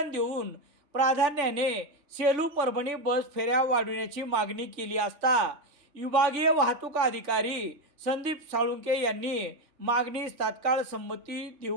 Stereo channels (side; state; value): left; late; 3.4 ms